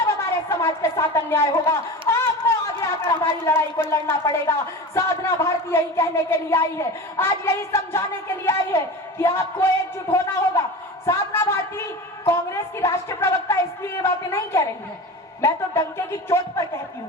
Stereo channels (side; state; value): both; normal; correlation 0.31